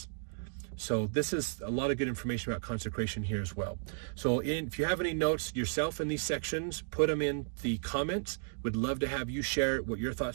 So this is a lot of good information about consecration here as well. So if you have any notes yourself in these sections, put them in the comments. Would love to have you share what your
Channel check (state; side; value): silent; left; digital silence